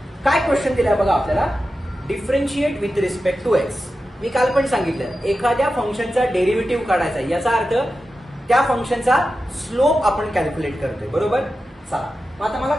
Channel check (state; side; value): normal; both; correlation 0.92